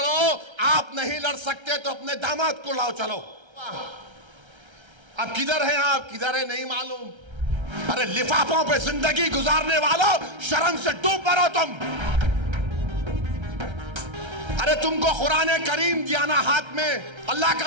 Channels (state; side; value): late; left; 1.3 ms